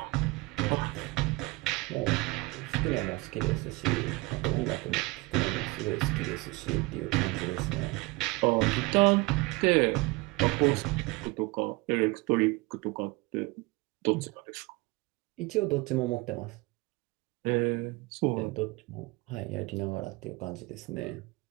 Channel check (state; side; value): quieter; left; 23.3 dB